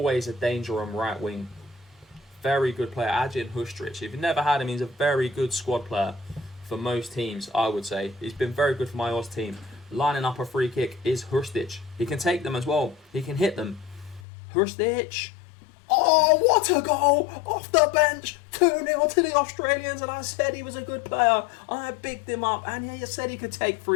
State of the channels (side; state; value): right; drops out; at 14.2 s